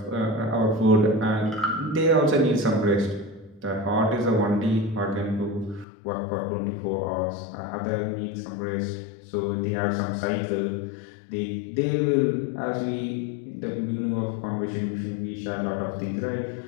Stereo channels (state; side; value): drops out; right; at 5.9 s